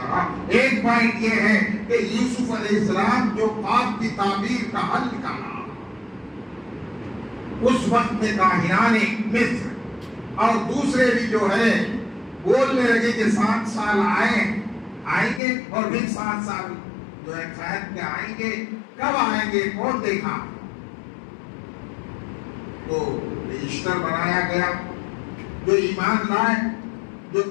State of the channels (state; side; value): drops out; right; at 15.4 s